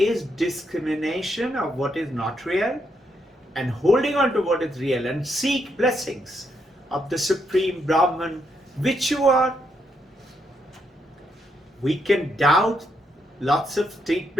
discrimination of what is not real and holding on to what is real, and seek blessings of the Supreme Brahman, which you are. We can doubt lots of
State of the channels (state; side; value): normal; both; correlation 0.78